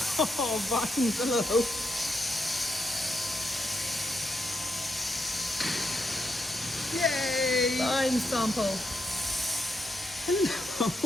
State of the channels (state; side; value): normal; both; correlation 0.81